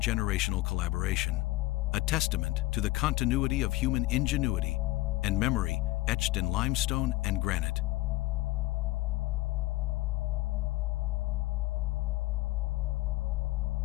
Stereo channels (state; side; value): quieter; right; 19.1 dB